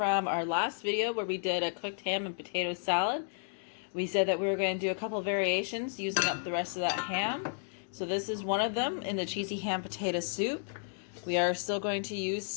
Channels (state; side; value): silent; right; digital silence